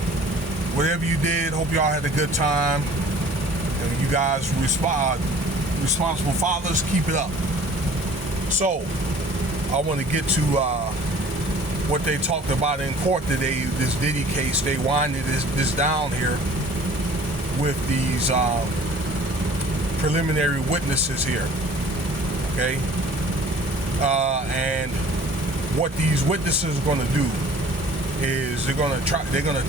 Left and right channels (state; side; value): late; left; 1.4 ms